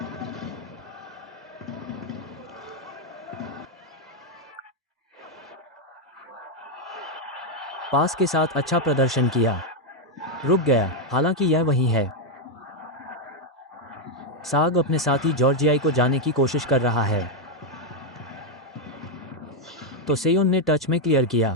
पास के साथ अच्छा प्रदर्शन किया। रुक गया, हालांकि यह वही है। साग अपने साथी जॉर्जियाई को जाने की कोशिश कर रहा है। तो सेयोन ने टच में क्लियर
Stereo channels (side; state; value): both; normal; correlation 0.02